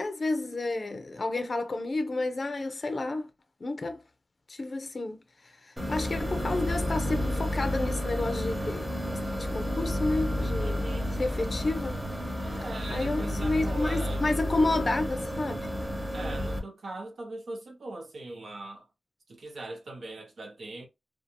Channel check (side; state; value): both; normal; correlation 0.95